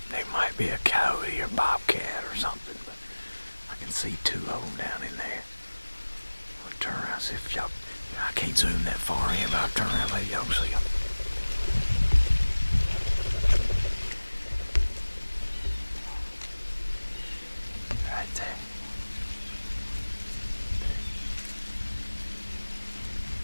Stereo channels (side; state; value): both; inverted; correlation -1.00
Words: might be a coyote or bobcat or something, but I can see 2 of them down in there. I'll turn around and see if y'all... I can't zoom that far in, but I'll turn around and maybe y'all can see them. Right there.